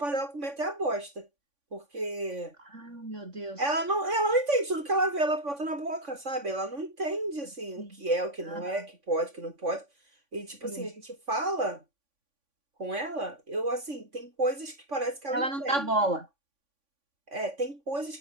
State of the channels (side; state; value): left; late; 3.5 ms